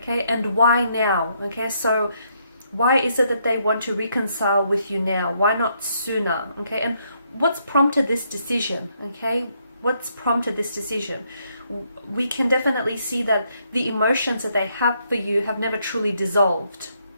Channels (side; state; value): both; inverted; correlation -0.73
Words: And why now, okay? So why is it that they want to reconcile with you now? Why not sooner, okay? And what's prompted this decision, okay? What's prompted this decision? We can definitely see that the emotions that they have for you have never truly dissolved.